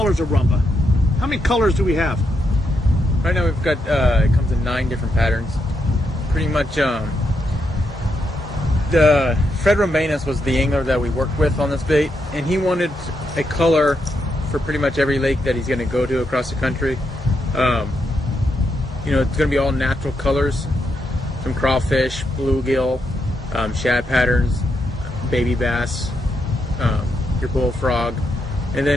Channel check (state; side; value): normal; both; correlation 0.81